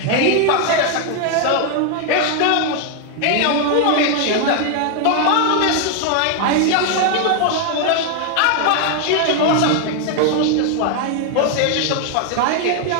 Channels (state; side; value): different; both; correlation 0.00